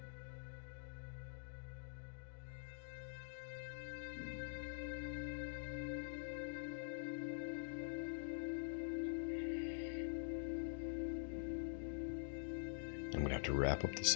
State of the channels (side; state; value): right; silent; digital silence